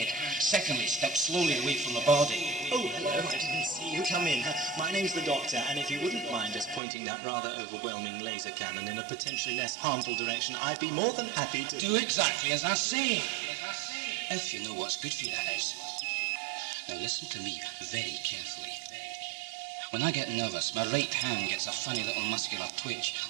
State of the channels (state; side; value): drops out; left; at 6.8 s